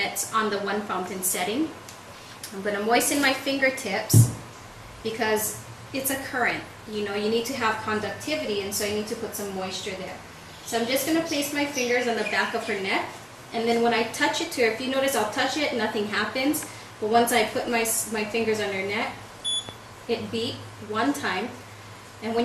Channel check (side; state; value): both; identical; correlation 1.00